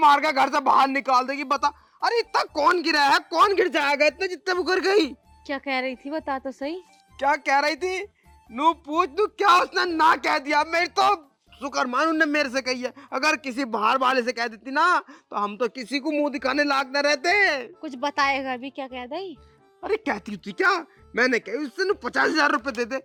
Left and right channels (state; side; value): identical; both; correlation 1.00